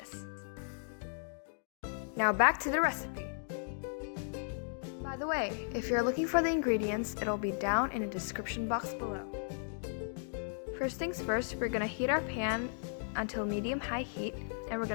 Now back to the recipe. By the way, if you're looking for the ingredients, it'll be down in the description box below. First things first, we're gonna heat our pan until medium-high heat, and we're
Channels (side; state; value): right; silent; digital silence